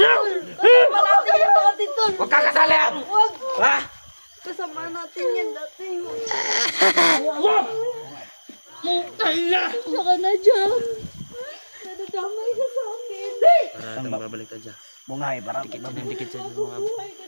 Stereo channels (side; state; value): both; inverted; correlation -1.00